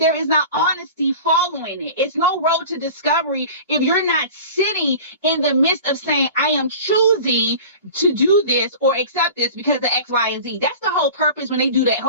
is not honesty following it. It's no road to discovery if you're not sitting in the midst of saying, I am choosing to do this or accept this because of X, Y, and Z. That's the whole purpose when they do that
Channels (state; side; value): inverted; both; correlation -0.37